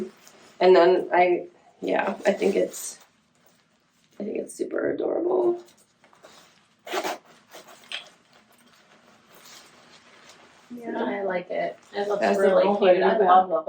And then I think it's super adorable. Yeah, I like it. It looks Has the really little hood cute. in I the love the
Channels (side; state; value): both; identical; correlation 1.00